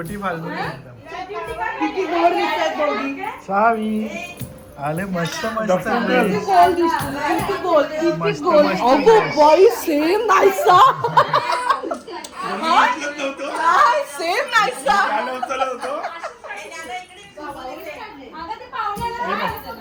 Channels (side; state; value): both; identical; correlation 1.00